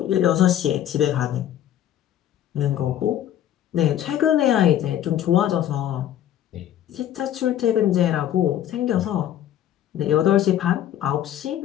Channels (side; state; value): right; quieter; 11.3 dB